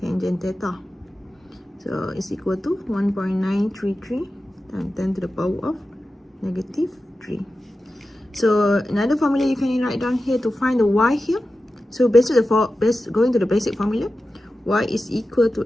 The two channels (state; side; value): normal; both; correlation 0.93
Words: theta. So it's equal to 1.933 times 10 to the power of -3. So another formula you can write down here to find the y here. So going to the basic formula, y is equal to